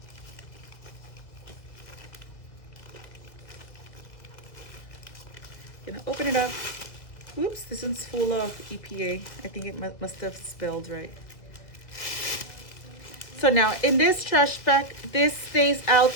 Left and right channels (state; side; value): late; right; 2.1 ms